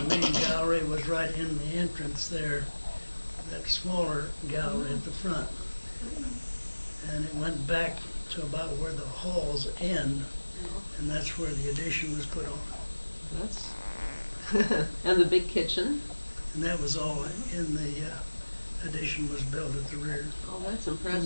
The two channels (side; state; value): both; inverted; correlation -1.00